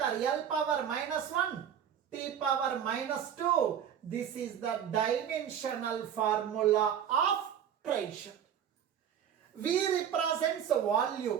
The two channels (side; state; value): left; quieter; 9.0 dB